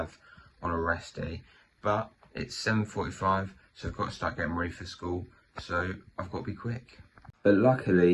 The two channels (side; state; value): both; identical; correlation 1.00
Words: on a rest day. But it's 7:45, so I've got to start getting ready for school. So I've got to be quick. But